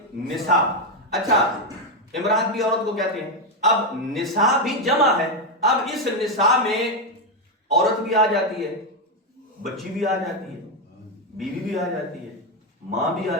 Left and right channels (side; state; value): both; normal; correlation 0.06